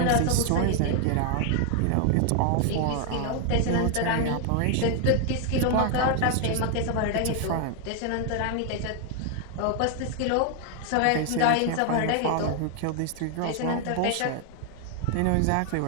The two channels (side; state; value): both; different; correlation 0.00